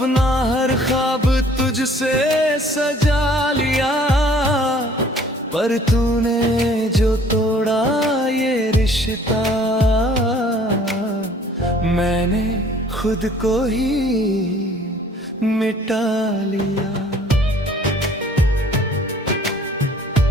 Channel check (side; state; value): both; normal; correlation 0.55